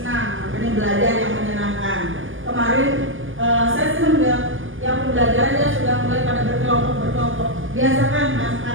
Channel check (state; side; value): late; left; 0.58 ms